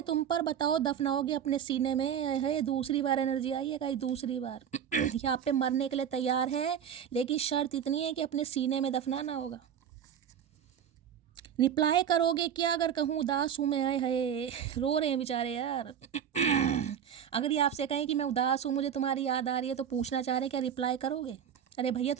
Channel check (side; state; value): left; quieter; 8.7 dB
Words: तुम पर, बताओ दफनाओगे अपने सीने में। है दूसरी बार एनर्जी आई है कहीं, दूसरी बार यहाँ पे मरने के लिए तैयार है, लेकिन शर्त इतनी है कि अपने सीने में दफनाना होगा। रिप्लाई करोगे क्या अगर कहूँ उदास हूँ मैं? है रो रहे हैं बेचारे यार अगर ये आपसे कहें कि मैं उदास हूँ, मुझे तुम्हारी याद आ रही है, तो पूछना चाह रहे हैं क्या रिप्लाई करोगे? अरे भैया